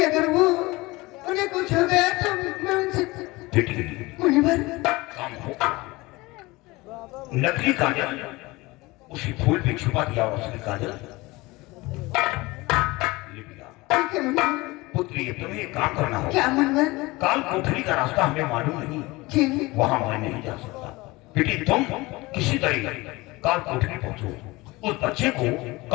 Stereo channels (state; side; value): quieter; right; 21.9 dB